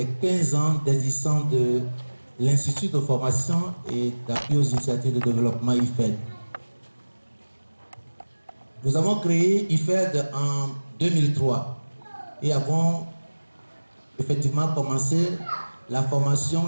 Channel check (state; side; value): inverted; both; correlation -1.00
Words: 15 ans d'existence de l'Institut de formation et d'appui aux initiatives de développement IFED. Nous avons créé IFED en 2003 et avons effectivement commencé la formation